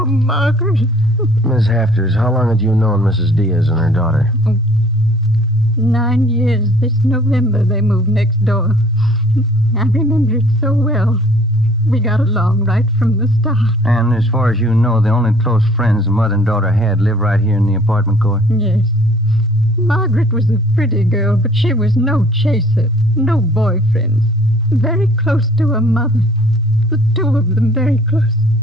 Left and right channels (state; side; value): normal; both; correlation 0.55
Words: Margaret. Miss Hafters, how long had you known Mrs. Diaz and her daughter? 9 years. This November they moved next door. I remember it so well. We got along right from the start. And as far as you know, the only close friends the mother and daughter had live right here in the apartment court? Yes. Margaret was a pretty girl, but she was no chaser, no boyfriends. Very close to her mother. The 2 of them very close.